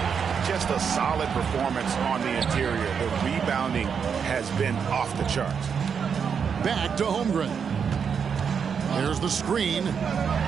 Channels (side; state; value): left; quieter; 6.7 dB